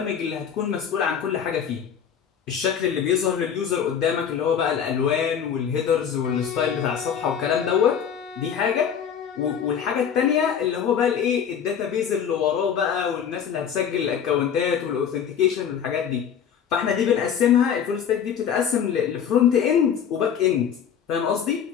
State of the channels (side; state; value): right; quieter; 8.0 dB